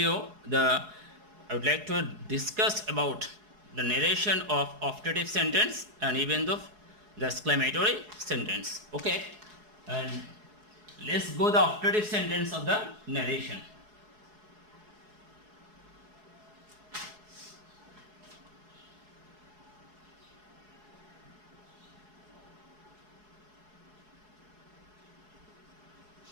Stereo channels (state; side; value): late; left; 4.7 ms